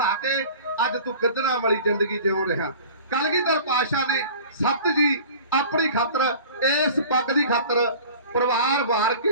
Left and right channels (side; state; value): both; inverted; correlation -0.42